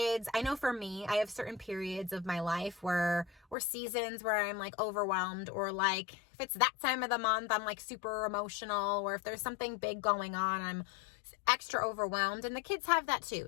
I know for me, I have certain periods of my life or seasons where I'm, like, overwhelmed, or, like, if it's that time of the month, I'm, like, super emotional, or if there's something big going on, I'm extra overwhelmed, and the kids have that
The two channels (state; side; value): drops out; right; at 3.6 s